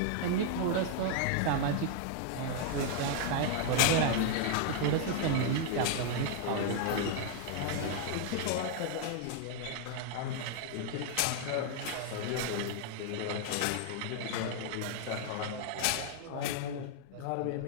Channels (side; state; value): both; different; correlation 0.00